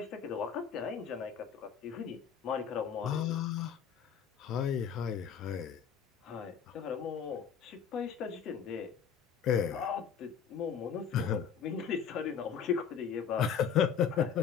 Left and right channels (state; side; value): quieter; right; 7.5 dB